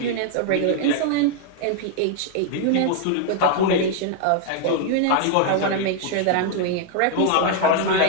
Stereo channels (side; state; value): both; different; correlation 0.00